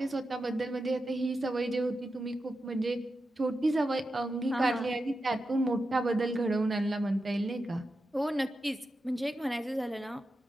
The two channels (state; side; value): normal; both; correlation 0.90